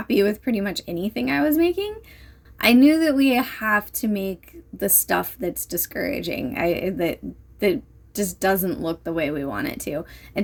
with pretty much anything I was making. I knew that we have to make the stuff that's discouraging, that just doesn't look the way we want it to.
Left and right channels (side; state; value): both; identical; correlation 1.00